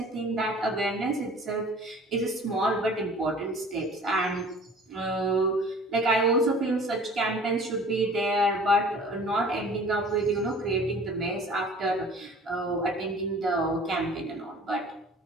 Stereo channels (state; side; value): normal; both; correlation 0.47